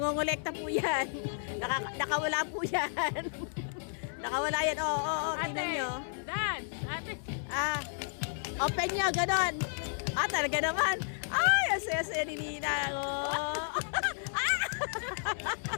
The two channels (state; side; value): silent; right; digital silence